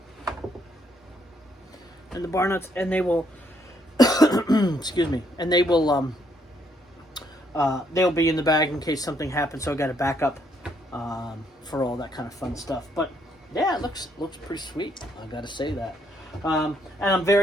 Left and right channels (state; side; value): normal; both; correlation 0.72